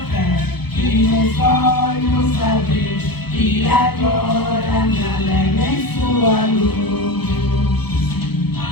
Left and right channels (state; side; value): late; right; 0.97 ms